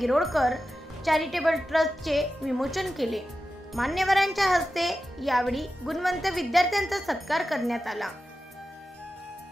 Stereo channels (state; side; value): normal; both; correlation 0.92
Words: चॅरिटेबल ट्रस्टचे विमोचन केले। मान्यवरांच्या हस्ते यावेळी गुणवंत विद्यार्थ्यांचा सत्कार करण्यात आला।